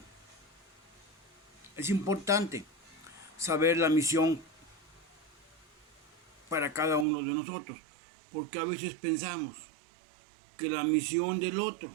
Es importante saber la misión para cada uno de nosotros, porque a veces pensamos que la misión del otro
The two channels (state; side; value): drops out; left; at 7.1 s